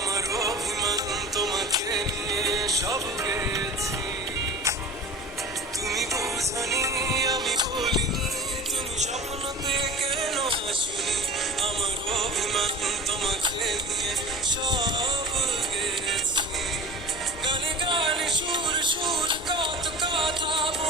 অভিমান তোমাকে নিয়ে সব গেছি। তুমি বুঝনি আমি বলিনি, তুমি স্বপ্নতে কেন আসনি, আমার অভিমান তোমাকে নিয়ে সব গেছি। গানে গানে সুর সুর কত কথা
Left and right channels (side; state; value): both; normal; correlation 0.39